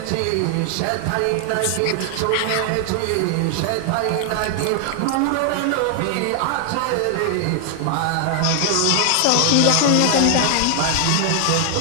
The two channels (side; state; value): both; different; correlation 0.00